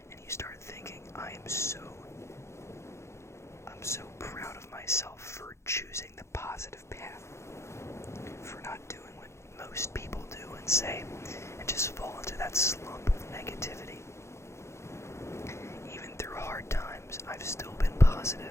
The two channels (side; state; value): right; late; 0.13 ms